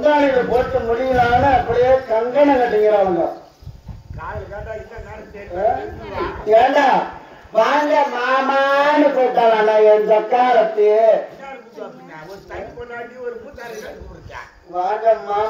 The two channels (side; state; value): both; identical; correlation 1.00